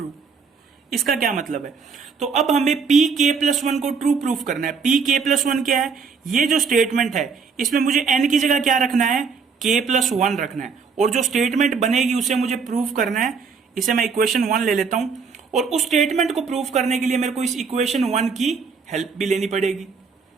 इसका क्या मतलब है? तो अब हमें pk plus 1 को ट्रू प्रूफ करना है। pk plus 1 क्या है? ये जो स्टेटमेंट है इसमें मुझे n की जगह क्या रखना है? k plus 1 रखना है। और जो स्टेटमेंट बनेगी उसे मुझे प्रूफ करना है। इसे मैं इक्वेशन 1 ले लेता हूं और उस स्टेटमेंट को प्रूफ करने के लिए मेरे को इस इक्वेशन 1 की हेल्प भी लेनी पड़ेगी।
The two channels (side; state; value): left; quieter; 5.4 dB